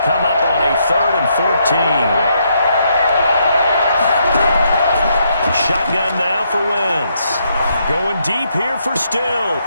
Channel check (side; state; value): both; inverted; correlation -0.75